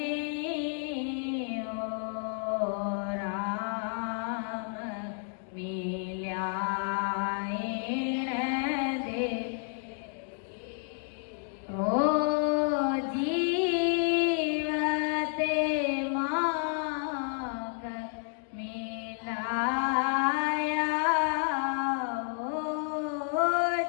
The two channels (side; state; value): right; silent; 57 dB below the other